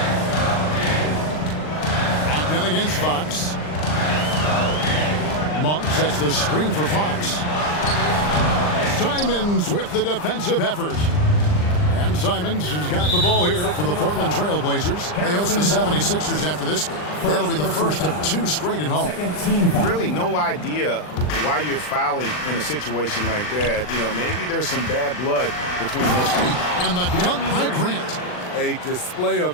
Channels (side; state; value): right; late; 39 ms